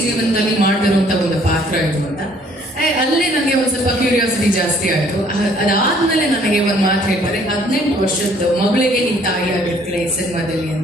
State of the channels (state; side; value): normal; both; correlation 0.60